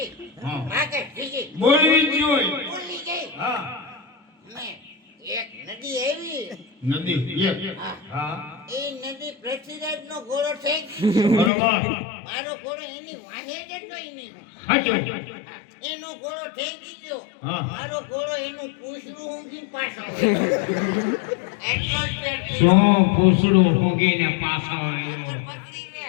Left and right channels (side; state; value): right; drops out; at 11.5 s